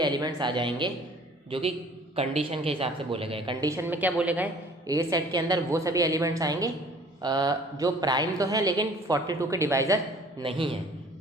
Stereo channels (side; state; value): both; normal; correlation 0.52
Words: आ जाएंगे जो कि कंडीशन के हिसाब से बोले गए। कंडीशन में क्या बोले गए? ए सेट के अंदर वो सभी एलिमेंट्स आएंगे जो प्राइम तो है लेकिन 42 के डिवाइज़र नहीं है।